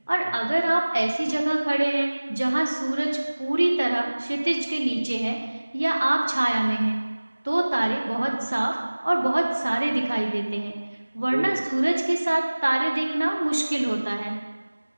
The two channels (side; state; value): both; inverted; correlation -1.00